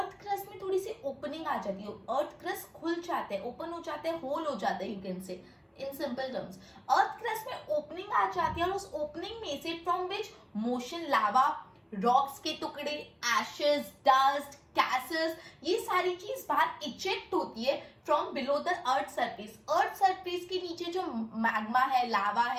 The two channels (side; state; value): both; identical; correlation 1.00